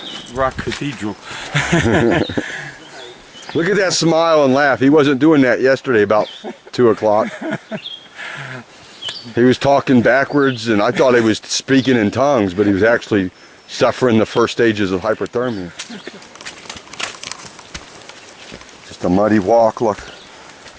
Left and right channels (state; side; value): identical; both; correlation 1.00